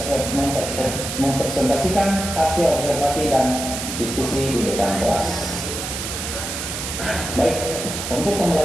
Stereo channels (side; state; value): right; noise; hiss, 5 dB below the sound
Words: Mempresentasikan hasil observasi dan diskusi di depan kelas. Baik, untuk